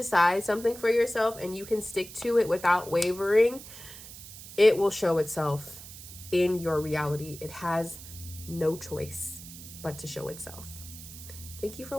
something for yourself and you can stick to it without wavering, it will show itself in your reality. It has no choice but to show itself. Thank you for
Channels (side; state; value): right; noise; hiss, 14 dB below the sound